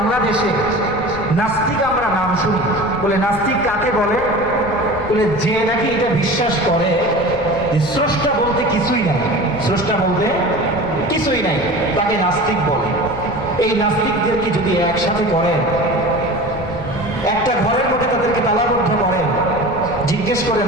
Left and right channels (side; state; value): left; noise; rumble, 13 dB below the sound